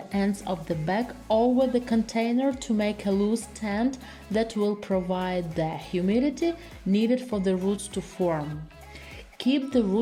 ends of the bag over the container to make a loose tent that will provide the humidity needed for the roots to form. Keep the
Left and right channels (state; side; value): identical; both; correlation 1.00